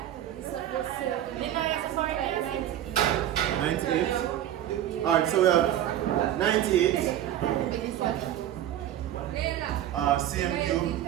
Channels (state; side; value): quieter; left; 11.9 dB